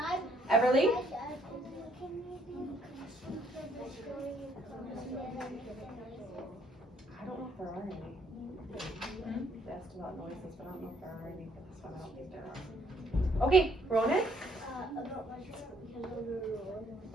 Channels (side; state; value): both; normal; correlation 0.67